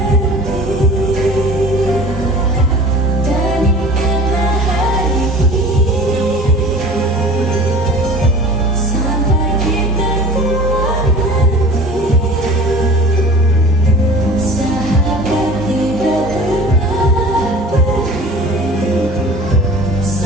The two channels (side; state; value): both; normal; correlation 0.42